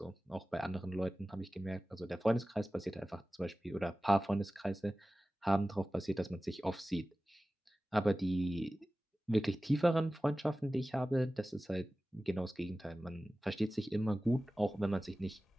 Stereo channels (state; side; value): normal; both; correlation 0.96